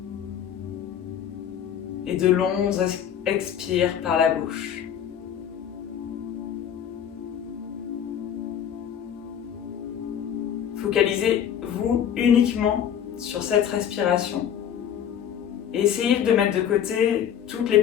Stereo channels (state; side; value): quieter; right; 9.2 dB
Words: et de longs expires par la bouche. Focalisez-vous uniquement sur cette respiration et essayez de mettre de côté toutes les